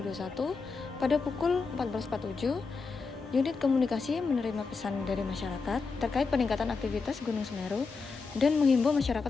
pada pukul 14.47, unit komunikasi menerima pesan dari masyarakat terkait peningkatan aktivitas Gunung Semeru dan menghimbau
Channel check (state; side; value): quieter; right; 4.6 dB